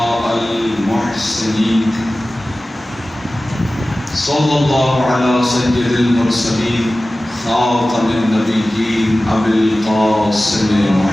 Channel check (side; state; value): both; normal; correlation 0.96